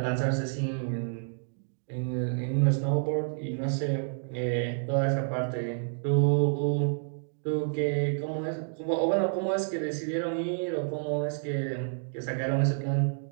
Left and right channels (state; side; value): silent; left; digital silence